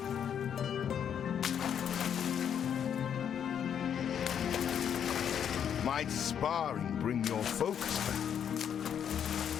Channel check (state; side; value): quieter; right; 8.5 dB